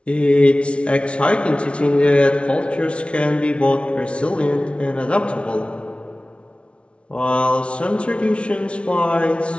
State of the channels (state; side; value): late; right; 0.060 ms